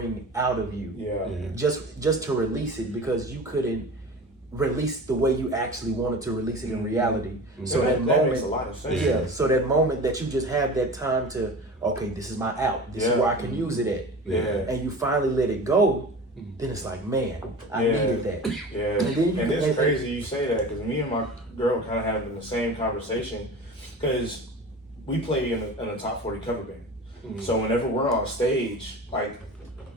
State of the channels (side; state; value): both; normal; correlation 0.35